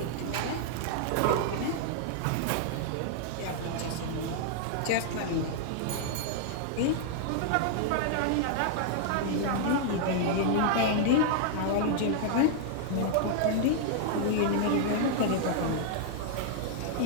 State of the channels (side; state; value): both; different; correlation -0.01